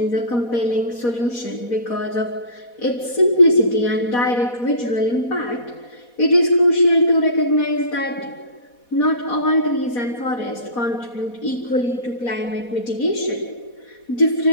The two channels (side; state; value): right; late; 4.1 ms